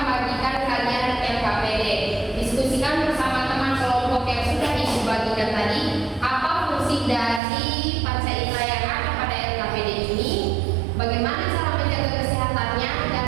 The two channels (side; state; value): left; drops out; at 7.4 s